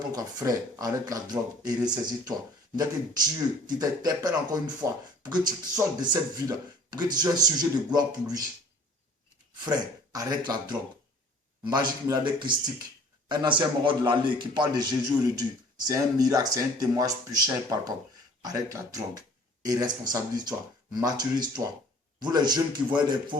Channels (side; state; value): both; normal; correlation 0.52